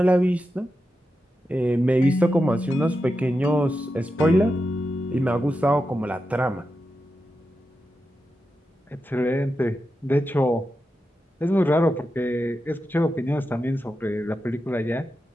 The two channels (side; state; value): both; normal; correlation 0.89